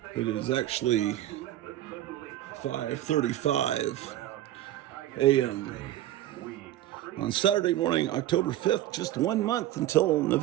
It is actually 5:35 a.m. on Saturday morning, October 5th, just 1 month until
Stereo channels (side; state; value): left; quieter; 13.5 dB